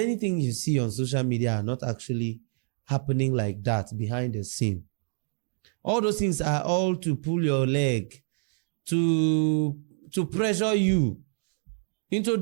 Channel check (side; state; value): left; silent; 57 dB below the other